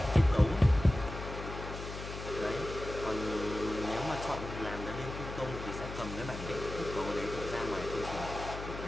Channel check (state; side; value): noise; left; hum, 9 dB below the sound